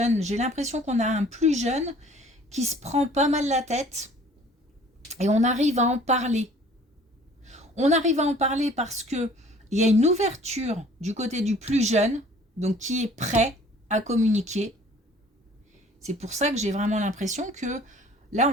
J'ai l'impression qu'on a un plus jeune qui se prend pas mal la tête et on arrive à en parler. On arrive à en parler parce que il y a une ouverture du côté du plus jeune, donc qui est prêt à communiquer. C'est pour ça que j'ai vraiment l'impression que là,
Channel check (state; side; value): normal; both; correlation 0.52